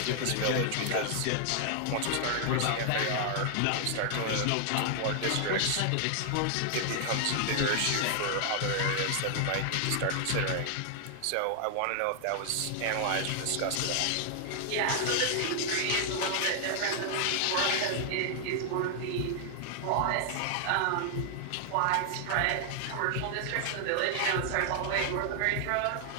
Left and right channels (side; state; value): both; different; correlation 0.00